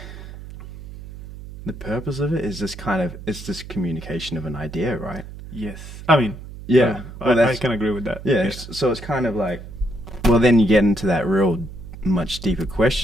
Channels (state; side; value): noise; right; hum, 13 dB below the sound